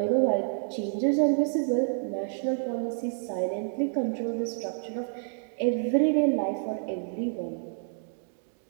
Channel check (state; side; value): silent; left; digital silence